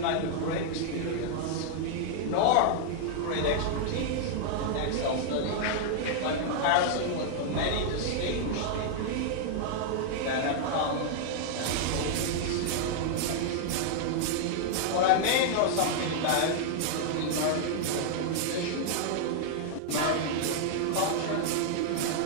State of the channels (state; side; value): different; both; correlation -0.01